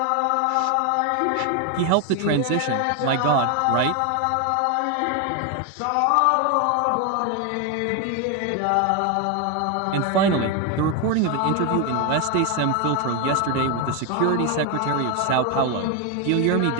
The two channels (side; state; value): both; different; correlation 0.01